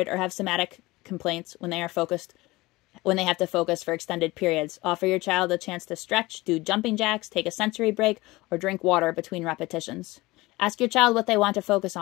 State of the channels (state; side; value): quieter; right; 20.6 dB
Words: or have somatic complaints when they have to focus for extended periods. Offer your child a chance to stretch, do jumping jacks, take a sensory break, or drink water between repetitions. Ask your child what they want to focus